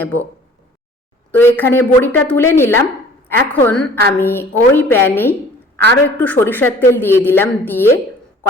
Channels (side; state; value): both; normal; correlation 0.50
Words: তো এখানে বড়িটা তুলে নিলাম। এখন আমি ওই প্যানেই আরও একটু সরিষার তেল দিয়ে দিলাম, দিয়ে